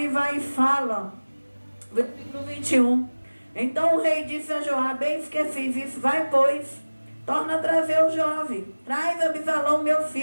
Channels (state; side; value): inverted; both; correlation -1.00